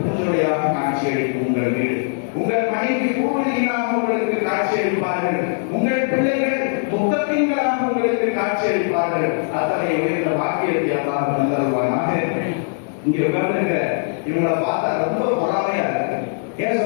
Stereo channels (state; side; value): silent; right; digital silence